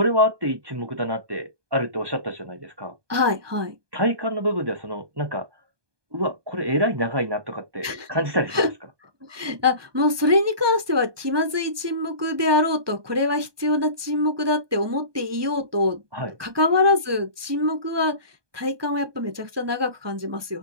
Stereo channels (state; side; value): late; left; 1.2 ms